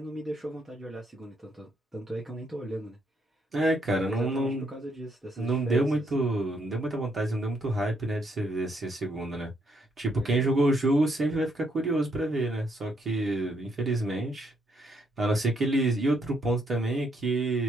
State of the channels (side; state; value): both; normal; correlation 0.74